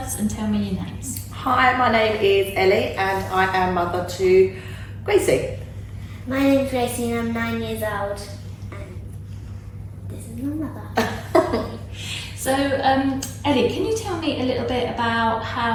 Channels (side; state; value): both; identical; correlation 1.00